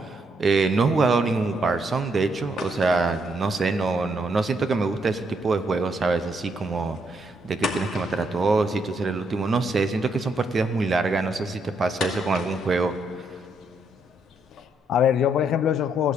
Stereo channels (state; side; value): normal; both; correlation 0.75